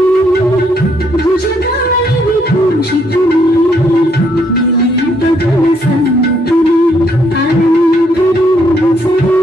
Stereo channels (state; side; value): normal; both; correlation 0.71